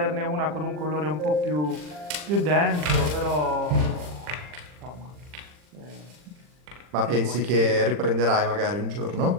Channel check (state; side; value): late; left; 40 ms